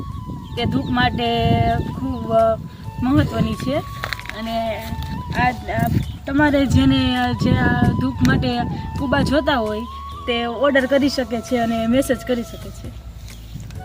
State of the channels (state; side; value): identical; both; correlation 1.00